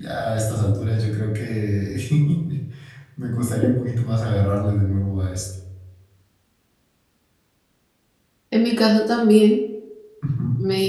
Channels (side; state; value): both; identical; correlation 1.00